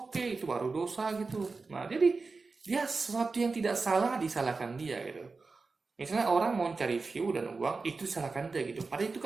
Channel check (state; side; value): quieter; left; 4.1 dB